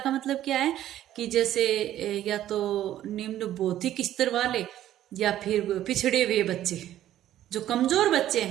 मतलब क्या है कि जैसे या तो निम्न बौद्धिक स्तर वाले या फिर पिछड़े हुए बच्चे, जो कमजोर बच्चे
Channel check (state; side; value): quieter; left; 12.6 dB